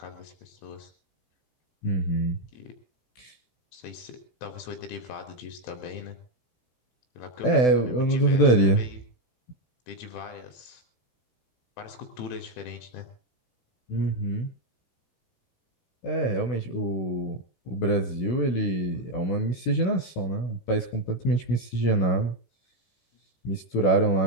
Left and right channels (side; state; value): right; late; 16 ms